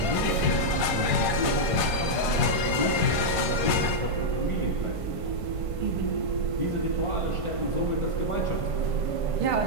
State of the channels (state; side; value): late; left; 1.5 ms